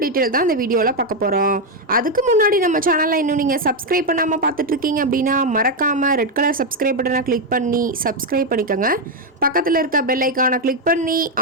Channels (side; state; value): both; normal; correlation 0.04